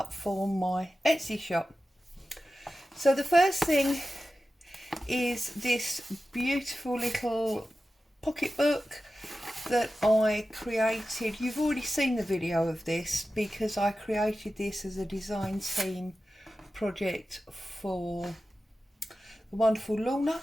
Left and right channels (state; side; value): normal; both; correlation 0.94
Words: for my Etsy shop. So the first thing is this beautiful little pocketbook that I created. You've already seen the video of this because I created this as a design team project for the wonderful Lorna